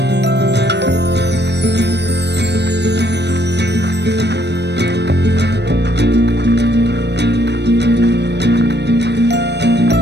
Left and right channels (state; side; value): late; left; 0.50 ms